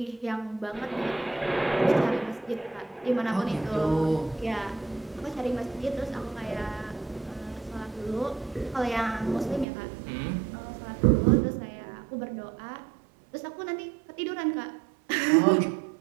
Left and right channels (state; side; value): drops out; left; at 9.7 s